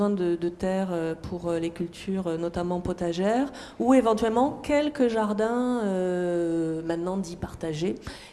de terre pour les cultures, notamment potagères, ou éventuellement quelques jardins, maintenant dits partagés.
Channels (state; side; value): identical; both; correlation 1.00